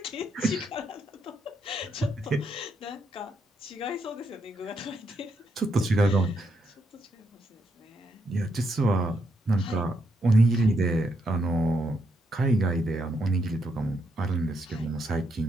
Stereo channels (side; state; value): both; normal; correlation 0.78